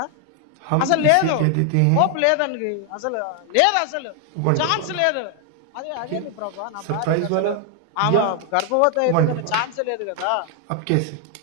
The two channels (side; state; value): both; different; correlation 0.00